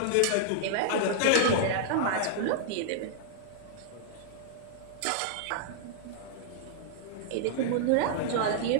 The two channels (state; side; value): different; both; correlation -0.01